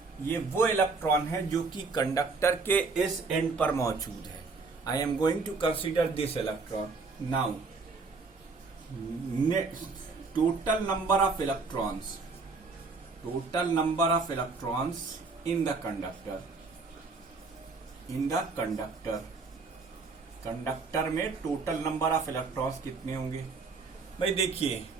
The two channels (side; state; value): left; quieter; 4.2 dB